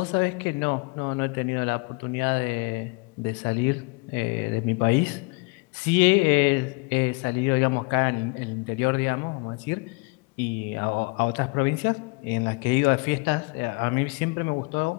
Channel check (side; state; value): right; quieter; 30.4 dB